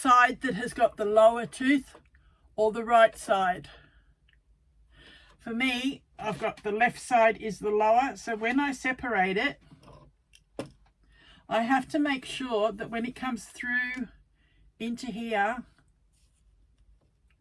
that has got the lower tooth or the right side? For me, I've got the left side is the lower, so when I separate it, I have to make sure that when it comes through into here,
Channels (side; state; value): both; identical; correlation 1.00